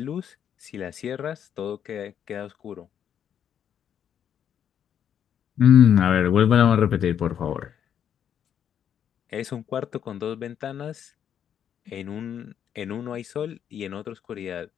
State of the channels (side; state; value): right; quieter; 9.0 dB